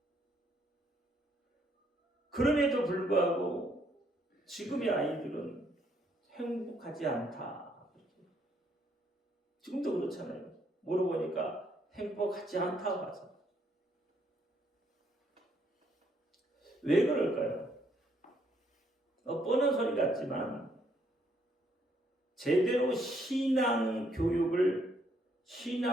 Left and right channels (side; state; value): both; normal; correlation 0.70